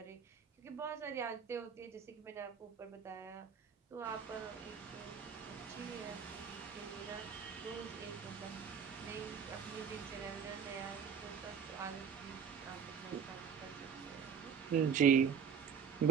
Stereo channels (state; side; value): quieter; left; 7.2 dB